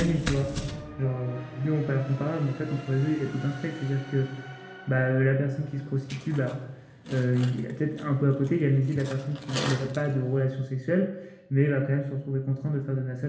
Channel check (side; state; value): both; identical; correlation 1.00